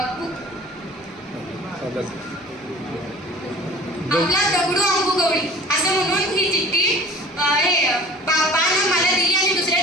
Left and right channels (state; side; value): normal; both; correlation 0.44